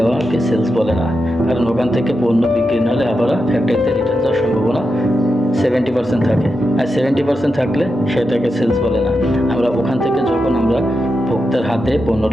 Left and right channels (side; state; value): both; normal; correlation 0.87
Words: সেলস বলে না, কারণ ওখান থেকে পণ্য বিক্রি না হলে আবার ফ্যাক্টরিতে রিটার্ন যাওয়ার সম্ভাবনা 70% থাকে, আর 70% থাকলে সেটাকে সেলস বলে না। আমরা ওখান থেকে যখন আমরা ভোক্তার হাতে